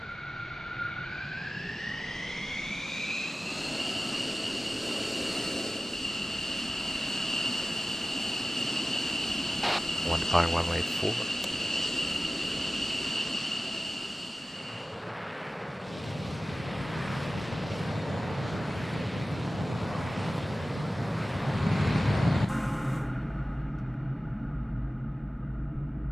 One fire, 1-way 4.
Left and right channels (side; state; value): both; normal; correlation 0.96